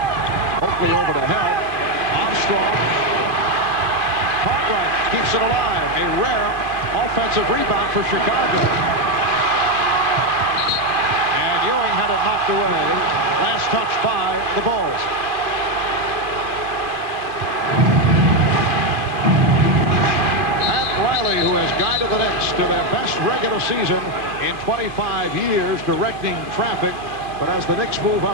Oakley over to help. Armstrong. Cartwright keeps it alive. A rare offensive rebound for Chicago. And Ewing had it knocked away. Last touch by the Bulls. Riley, who has guided the Knicks to their best regular season in 25 years, directing traffic. But as the Knicks move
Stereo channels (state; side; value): late; left; 2.6 ms